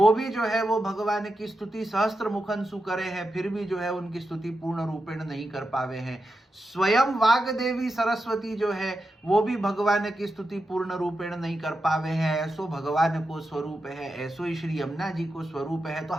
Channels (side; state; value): both; normal; correlation 0.89